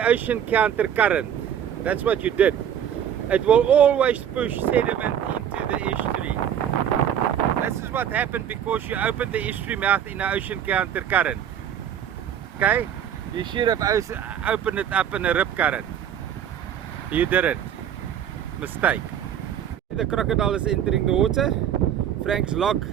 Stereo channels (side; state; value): left; quieter; 9.3 dB